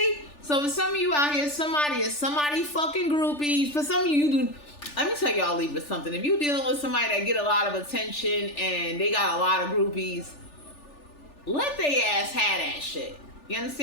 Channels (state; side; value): late; right; 3.4 ms